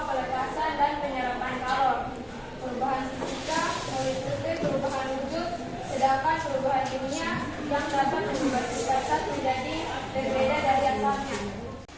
pelepasan dan penyerapan kalor. Perubahan fisika meliputi perubahan wujud, sedangkan perubahan kimia yang dapat mengubah sifat zat menjadi berbeda dari asalnya.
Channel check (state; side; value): identical; both; correlation 1.00